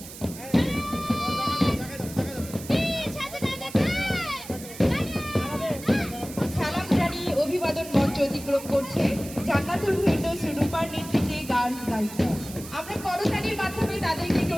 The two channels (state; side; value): noise; right; hiss, 14 dB below the sound